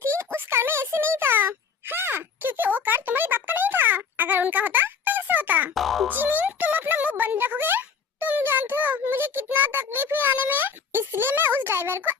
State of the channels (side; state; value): right; quieter; 6.0 dB